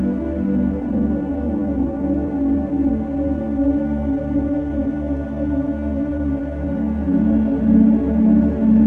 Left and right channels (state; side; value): identical; both; correlation 1.00